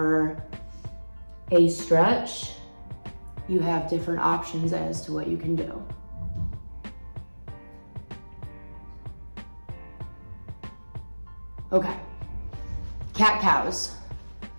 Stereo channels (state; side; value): inverted; both; correlation -1.00